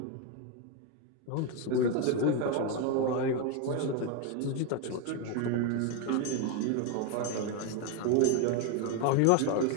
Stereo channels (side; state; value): both; different; correlation 0.02